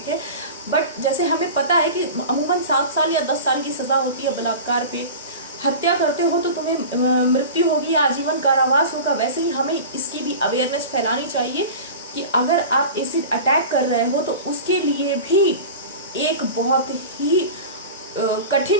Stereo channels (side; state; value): both; inverted; correlation -0.33